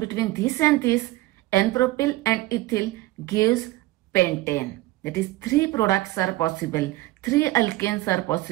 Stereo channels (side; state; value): left; quieter; 18.4 dB